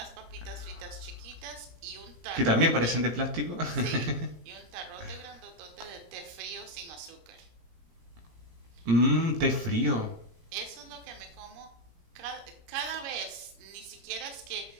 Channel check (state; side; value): late; left; 18 ms